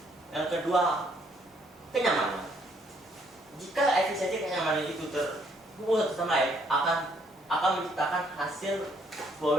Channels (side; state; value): both; normal; correlation 0.68